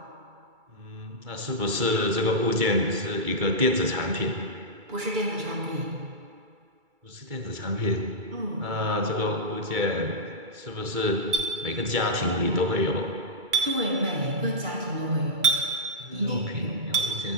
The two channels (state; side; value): late; left; 2.3 ms